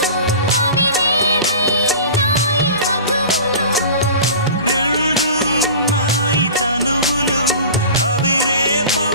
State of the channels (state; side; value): inverted; both; correlation -0.37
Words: రెండు నాయి తనువులు అవి